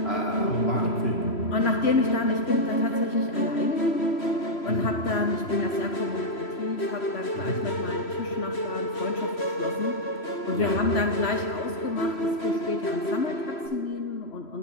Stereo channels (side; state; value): right; late; 3.0 ms